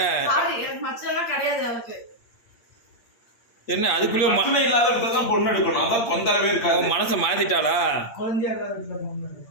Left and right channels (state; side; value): late; right; 8.7 ms